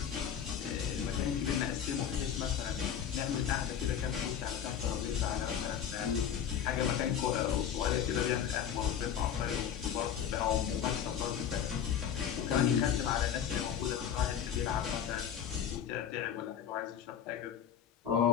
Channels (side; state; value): right; quieter; 8.8 dB